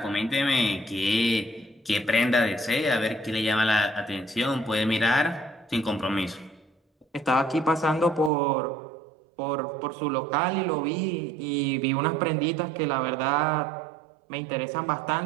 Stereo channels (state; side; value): drops out; left; at 8.3 s